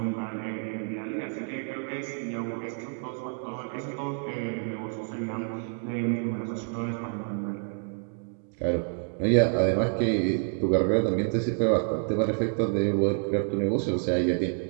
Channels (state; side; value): silent; left; 59 dB below the other